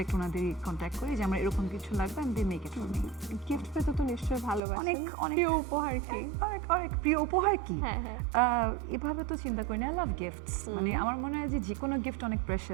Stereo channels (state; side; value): drops out; left; at 4.6 s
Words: ওনাদের কন্ট্যাক্ট করি যে আমার এরকম কিছু লাগবে, আমি they make it for me. Gift পেতে তো নিশ্চয়ই ভালোবাসেন। অনেক প্রিয় উপহার কি? অনেক প্রিয় উপহার কি? হ্যাঁ। এভাবে তো চিন্তা করি না। I love gifts. মানে আমার মনে হয় যে কোনো গিফট অনেক